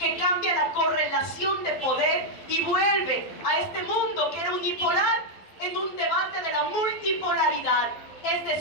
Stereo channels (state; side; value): late; right; 11 ms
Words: cambia la correlación de poder y vuelve a este mundo que era unipolar en un debate de la multipolaridad. Es